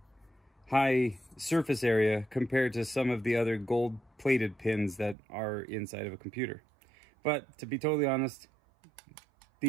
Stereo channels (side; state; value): left; drops out; at 5.2 s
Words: surface area compared to some of the other gold plated pins that are inside of a computer. But to be totally honest,